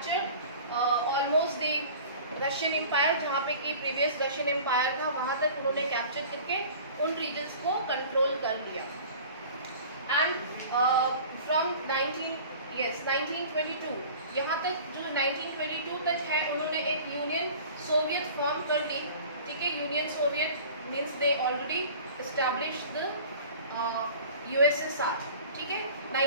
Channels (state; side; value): inverted; both; correlation -0.42